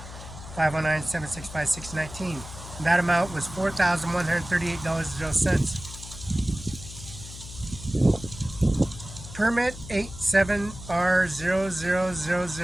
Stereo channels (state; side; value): noise; left; hum, 13 dB below the sound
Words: 509-765-619. That amount was $4,138.00. Permit